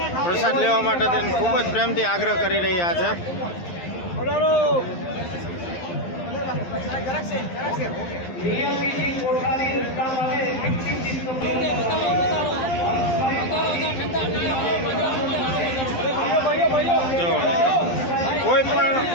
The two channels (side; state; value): right; late; 11 ms